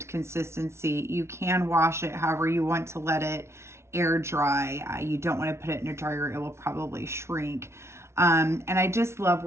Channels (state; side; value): late; left; 0.13 ms